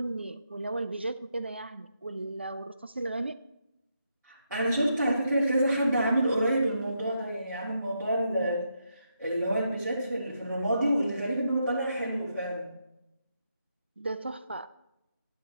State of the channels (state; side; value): inverted; both; correlation -0.81